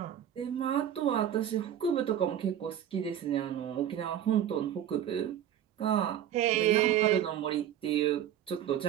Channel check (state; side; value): quieter; left; 10.3 dB